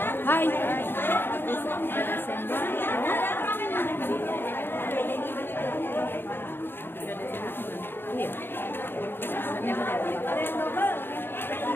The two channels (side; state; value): right; late; 0.10 ms